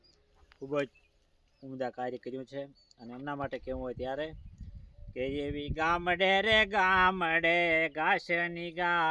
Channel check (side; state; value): both; identical; correlation 1.00